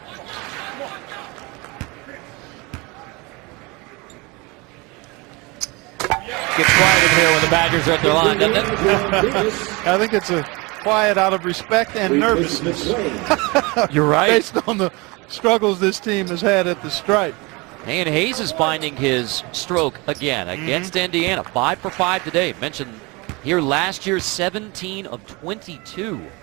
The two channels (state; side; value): quieter; left; 26.2 dB